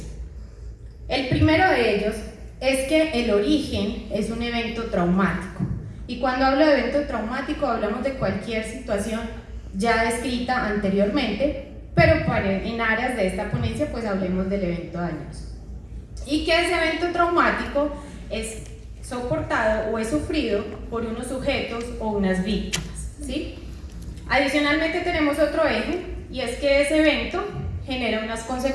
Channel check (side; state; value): both; identical; correlation 1.00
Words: El primero de ellos es que el origen es un evento traumático. Y cuando hablo de evento traumático hablamos de cualquier situación ya descrita anteriormente, pero en áreas de esta ponencia pues hablemos del evento dañoso. Y que ese evento traumático es soportado o es sufrido por unos sujetos o unas víctimas, ¿sí? Adicionalmente tenemos otro eje, y es que ese evento genera unas